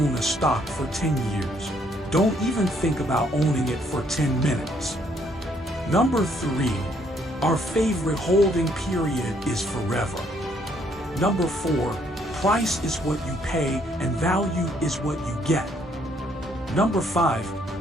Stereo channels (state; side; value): normal; both; correlation 0.68